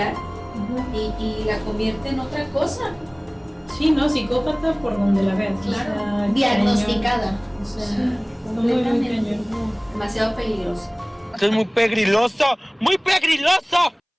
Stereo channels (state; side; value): identical; both; correlation 1.00